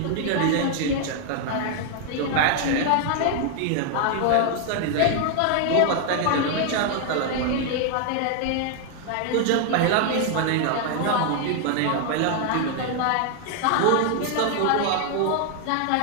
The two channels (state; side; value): different; both; correlation 0.00